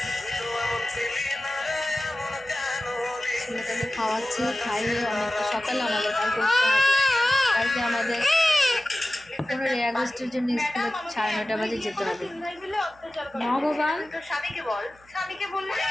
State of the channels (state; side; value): noise; right; hum, 28 dB below the sound